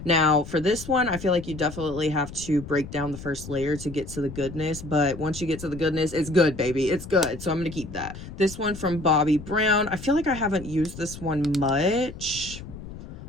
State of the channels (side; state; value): left; noise; rumble, 13 dB below the sound